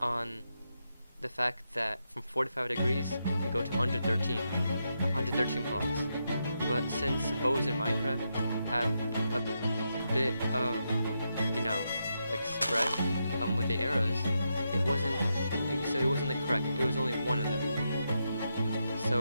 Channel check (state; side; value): inverted; both; correlation -0.84